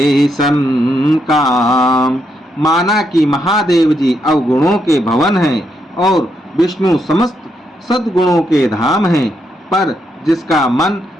सन काम। माना कि महादेव जी अवगुणों के भवन हैं और विष्णु समस्त सद्गुणों के धाम हैं, पर जिसका मन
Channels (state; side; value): normal; both; correlation 0.79